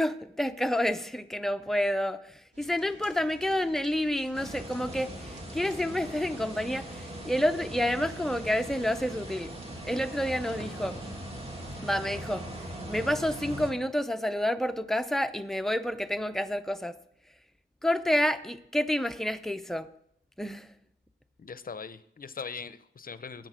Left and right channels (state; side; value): normal; both; correlation 0.91